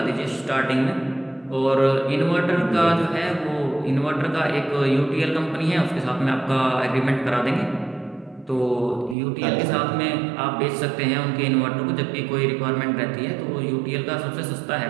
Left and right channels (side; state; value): left; drops out; at 9.2 s